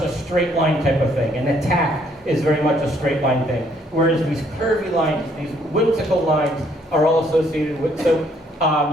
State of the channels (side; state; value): both; normal; correlation 0.67